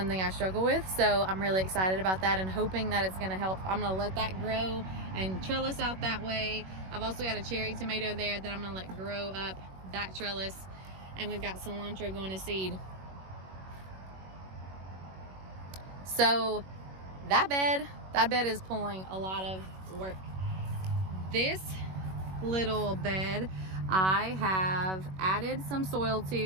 I struggle with. So I'm really excited about that and hoping that it's gonna help. I'm gonna let that grow and trellis out that way. I've also got a cherry tomato there that I'm gonna let grow up that trellis. And we've got cilantro going to seed. So that bed is pulling a lot of work. This little bed I have added some soil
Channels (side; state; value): left; late; 21 ms